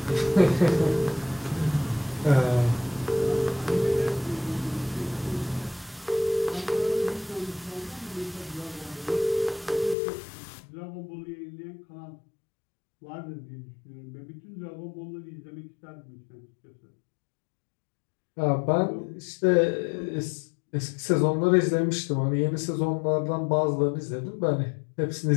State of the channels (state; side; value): drops out; right; at 10.0 s